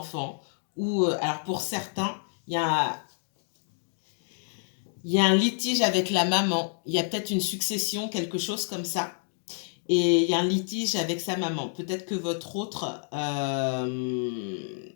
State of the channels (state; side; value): silent; right; digital silence